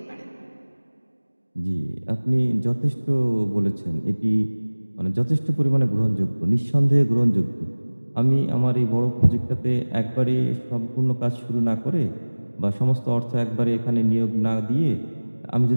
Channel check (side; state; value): both; inverted; correlation -1.00